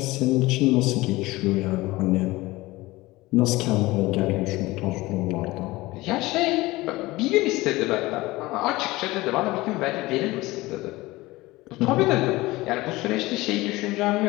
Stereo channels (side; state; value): right; quieter; 19.9 dB